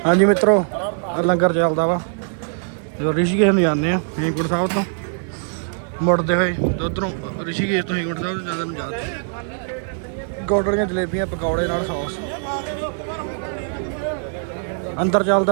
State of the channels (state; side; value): silent; left; digital silence